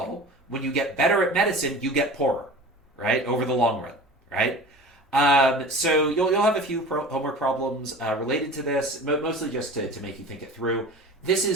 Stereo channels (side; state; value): both; normal; correlation 0.38